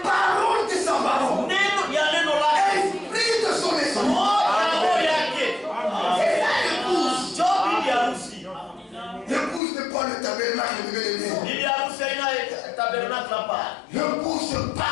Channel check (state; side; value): drops out; right; at 9.6 s